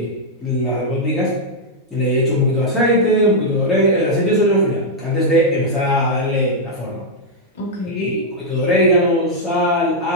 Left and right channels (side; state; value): both; normal; correlation -0.04